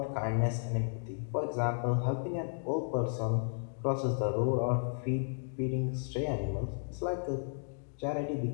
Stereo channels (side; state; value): right; silent; digital silence